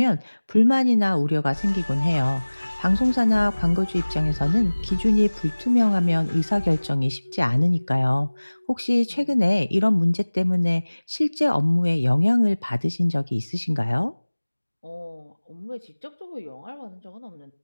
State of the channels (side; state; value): both; inverted; correlation -1.00